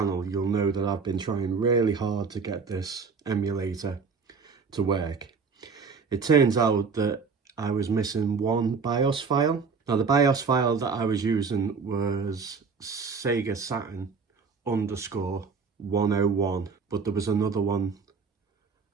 you'll know that I've been trying really hard to get this emulator to work. It turns out that I was missing one BIOS file. Now the BIOS file that I was using was Sega Saturn _101, but there was another one.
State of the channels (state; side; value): quieter; left; 5.3 dB